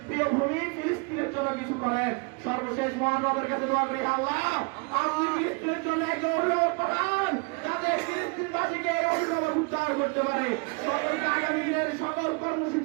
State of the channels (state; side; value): quieter; left; 32.1 dB